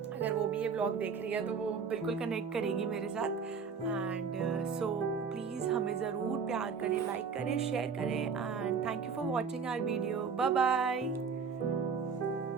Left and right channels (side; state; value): left; quieter; 5.7 dB